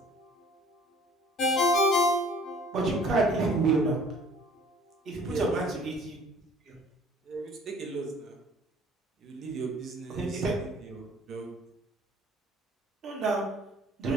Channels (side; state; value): both; normal; correlation 0.52